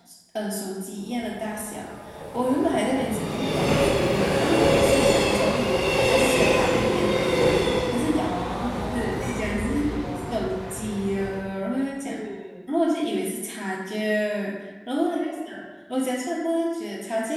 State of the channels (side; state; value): both; identical; correlation 1.00